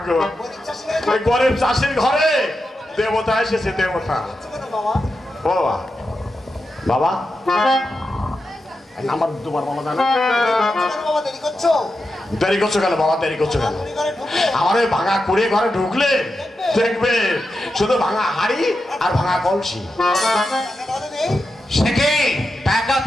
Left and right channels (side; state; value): both; normal; correlation 0.89